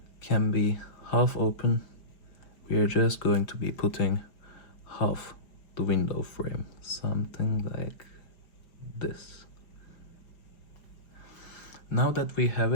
can be half open, we are just going to be putting half the window frame, something like this. Now that we have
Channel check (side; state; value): right; late; 5.1 ms